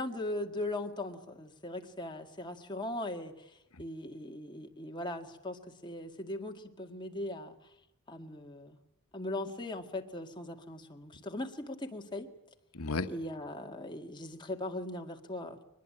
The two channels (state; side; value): normal; both; correlation 0.38